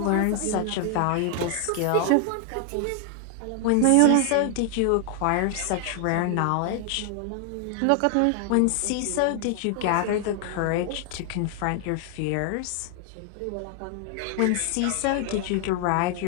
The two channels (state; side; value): different; both; correlation 0.00